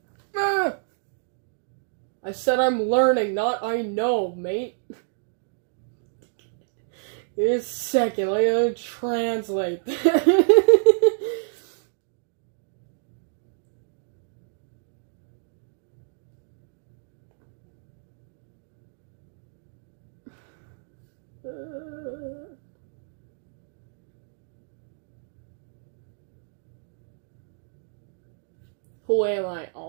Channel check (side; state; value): left; silent; digital silence